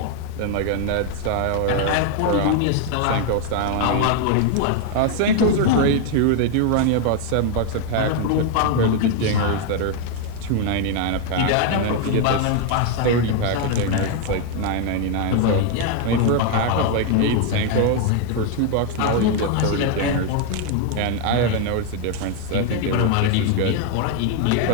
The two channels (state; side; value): different; both; correlation 0.00